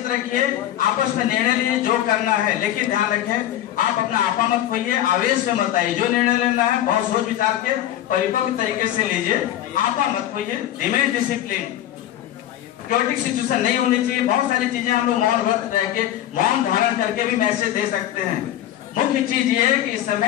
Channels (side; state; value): right; quieter; 12.4 dB